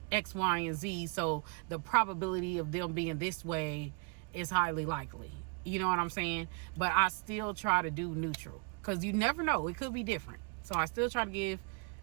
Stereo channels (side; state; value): left; quieter; 33.9 dB